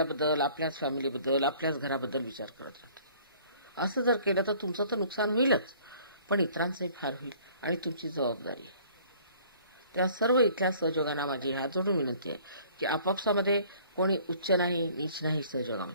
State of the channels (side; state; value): both; inverted; correlation -0.54